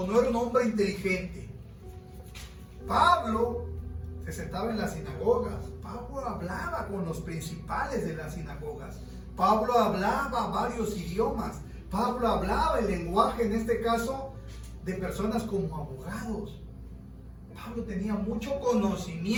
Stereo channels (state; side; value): identical; both; correlation 1.00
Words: no era un hombre inteligente. Pablo se sentaba en las sinagogas. Pablo hablaba con los principales de las sinagogas. Pablo hablaba varios idiomas. Pablo hablaba el lenguaje, en este caso, de personas como abogados. Pablo tenía mucho